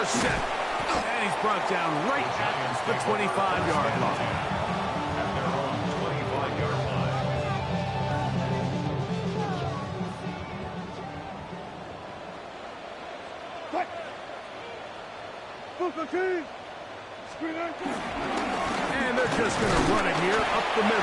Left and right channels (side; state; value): both; identical; correlation 1.00